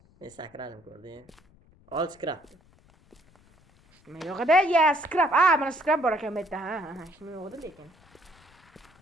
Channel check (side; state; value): left; noise; rumble, 30 dB below the sound